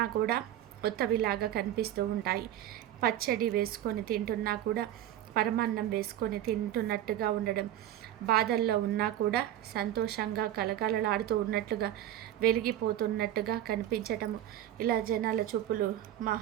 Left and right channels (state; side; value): quieter; left; 12.1 dB